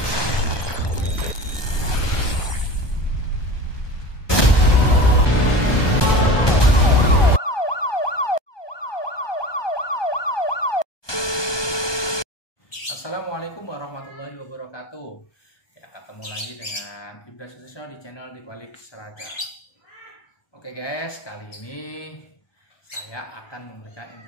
Assalamualaikum warahmatullahi wabarakatuh. Ya, ketemu lagi dengan Ibda Sutisno di channel Di Balik Seragam. Oke guys, kali ini saya akan memberikan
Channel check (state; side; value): late; right; 1.2 ms